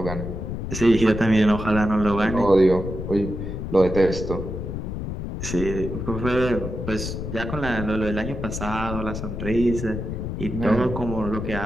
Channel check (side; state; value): left; noise; rumble, 5 dB below the sound